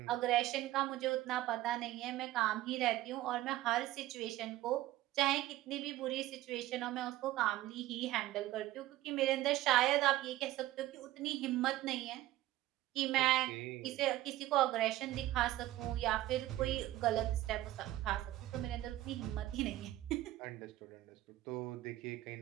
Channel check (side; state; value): left; quieter; 15.5 dB